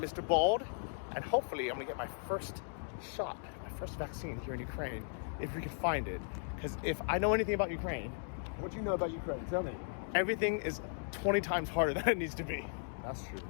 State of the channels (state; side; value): silent; right; digital silence